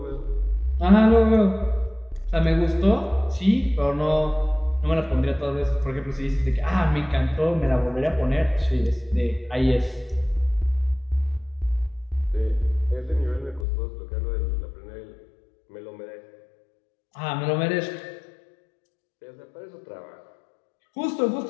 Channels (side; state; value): right; drops out; at 13.7 s